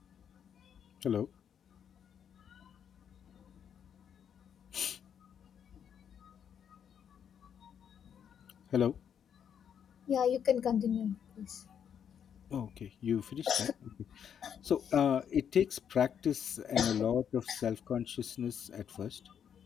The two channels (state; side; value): quieter; right; 8.3 dB